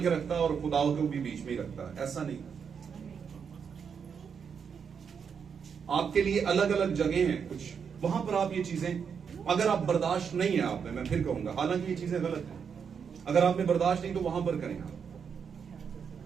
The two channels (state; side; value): quieter; left; 6.7 dB